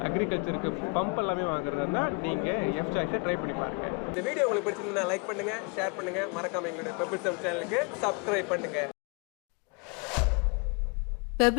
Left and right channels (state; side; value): quieter; right; 33.6 dB